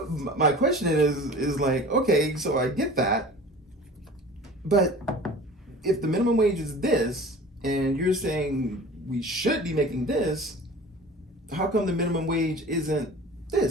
my question is like, okay, so I get that, but if the minimum wage is this, and you're saying we should be making this, how come the minimum wage isn't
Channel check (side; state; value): both; normal; correlation 0.41